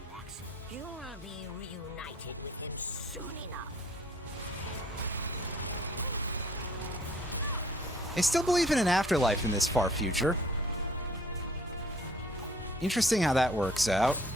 You will be reunited with him soon enough. I still believe in an afterlife in this far future. Interesting how that works out.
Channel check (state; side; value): normal; both; correlation 0.56